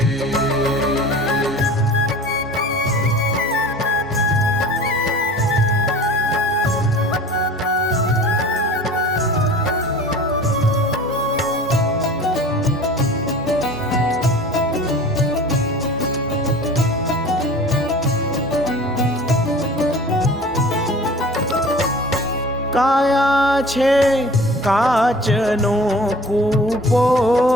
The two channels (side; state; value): both; normal; correlation 0.42